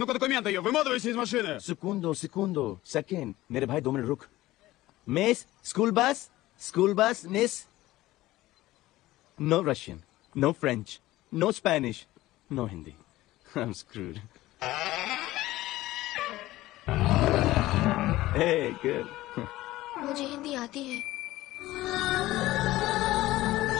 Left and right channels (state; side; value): quieter; right; 16.9 dB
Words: документы ее. Выматывайся из машины. Segundo. Second. मेरे भाई 2 मिनट रुक. Miss, school bus, miss. No Russian, no French, no Spanish, no Hindi. I'm screwed. Hey, good. मुझे हिंदी आती है।